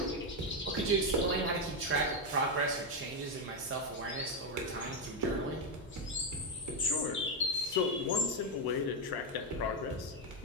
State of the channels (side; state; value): both; normal; correlation 0.05